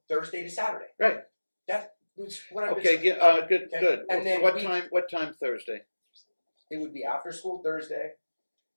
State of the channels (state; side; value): inverted; both; correlation -1.00